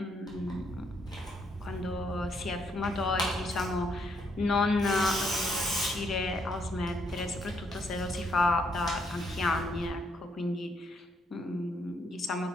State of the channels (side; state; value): both; normal; correlation 0.73